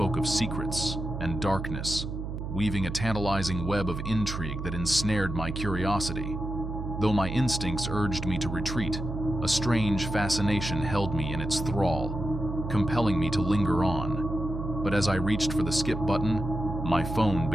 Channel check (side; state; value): right; noise; hum, 5 dB below the sound